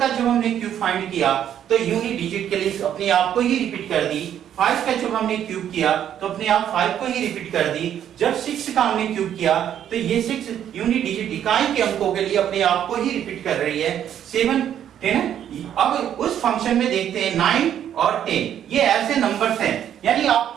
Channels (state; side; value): quieter; left; 10.0 dB